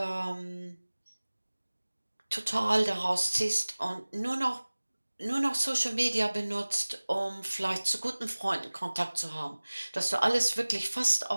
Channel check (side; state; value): both; inverted; correlation -1.00